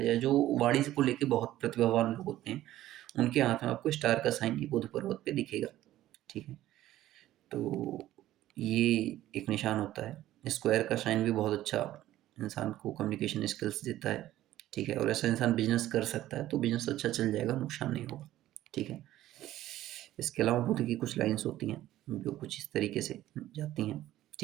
जो वाणी को लेके बहुत प्रतिभावान लोग होते हैं, उनके हाथ में आपको स्टार का साइन ये बुध पर्वत पे दिखेगा, ठीक है। तो ये एक निशान होता है। स्क्वायर का साइन भी बहुत अच्छा इंसान को कम्युनिकेशन स्किल्स देता है, ठीक है। और ऐसा इंसान बिजनेस कर सकता है, तो बिजनेस अच्छा चल जाएगा, नुकसान नहीं होगा, ठीक है। इसके अलावा बुध की कुछ लाइन्स होती हैं जो कुछ इस तरीके से जाती हैं,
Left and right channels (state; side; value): quieter; left; 14.2 dB